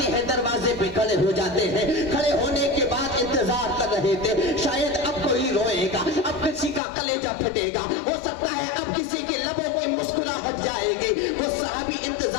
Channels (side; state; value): right; drops out; at 6.8 s